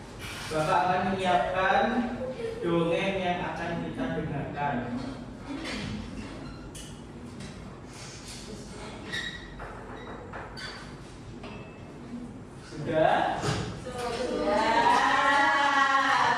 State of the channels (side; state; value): both; identical; correlation 1.00